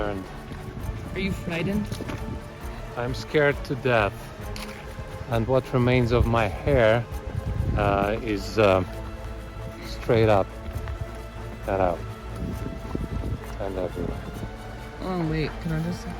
Are you frightened? I'm scared to death. And what remains of my hair is straight up, cut out, and everywhere. Oh wait, can I just see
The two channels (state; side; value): identical; both; correlation 1.00